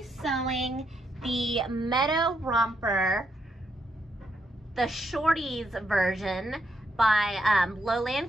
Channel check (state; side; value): normal; both; correlation 0.78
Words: sewing the Meadow Romper, the shorties version by